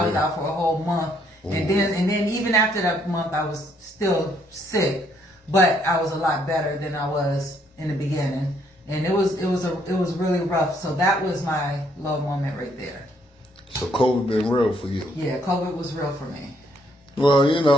was out for a whole month, and then even after that month, I was still sick, but I was a lot better than I was in the beginning. And it was really rough. So that was my low moment right there. So COVID been real for you? Yeah, COVID was real for me. Well, you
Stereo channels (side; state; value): both; normal; correlation 0.69